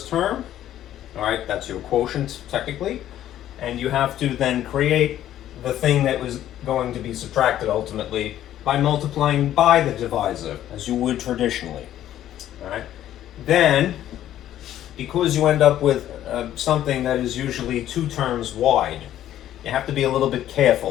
term, all right, that's your quotient technically, and you have to then create the thing that was going to be subtracted ultimately by multiplying by the divisor, as you would traditionally. All right? Then, because you end up with something that is usually 2 terms wide, you have to be a little bit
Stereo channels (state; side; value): quieter; right; 12.1 dB